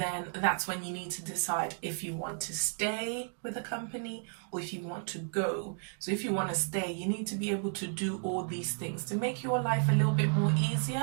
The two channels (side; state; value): left; silent; 56 dB below the other